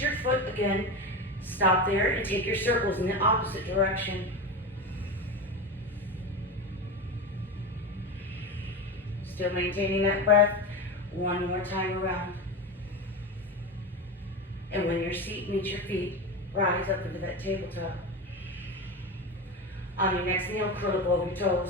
foot again, stop there and take your circles in the opposite direction. Still maintaining that breath. One more time around. And when your seat meets your feet, rise up into that tabletop. On your next inhale, curl up over your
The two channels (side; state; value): both; normal; correlation 0.22